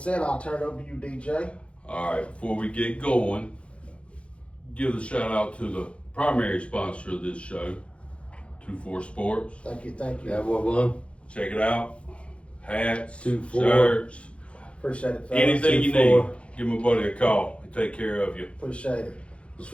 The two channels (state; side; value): late; right; 0.060 ms